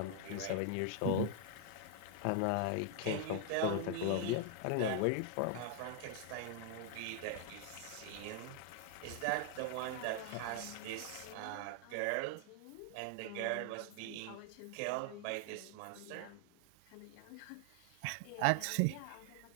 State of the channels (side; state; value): both; different; correlation 0.00